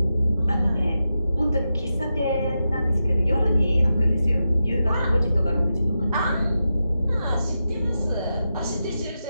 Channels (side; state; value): both; inverted; correlation -0.89